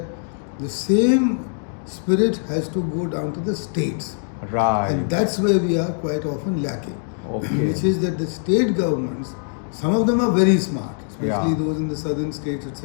the same spirit has to go down to the states. Right. And that's where we are quite often lacking. Okay. Which is that the state governments, some of them are very smart, especially those in the southern states,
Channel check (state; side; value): silent; right; digital silence